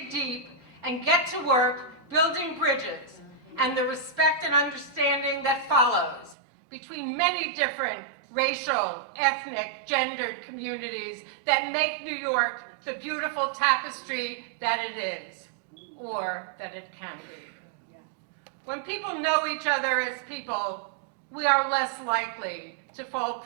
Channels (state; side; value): drops out; left; at 6.4 s